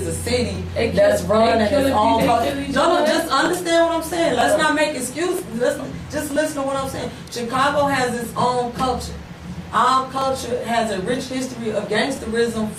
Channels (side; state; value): both; identical; correlation 1.00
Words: a city that's run at its own culture. No, just understand what I'm saying. Let's not make excuses. Just listen to what I'm saying. Chicago has its own culture. Our culture has a rich history of gangsterism,